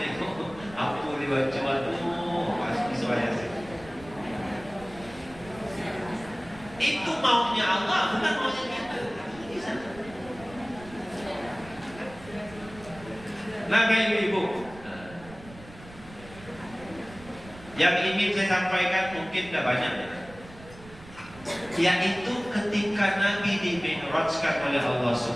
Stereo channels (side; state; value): right; noise; rumble, 19 dB below the sound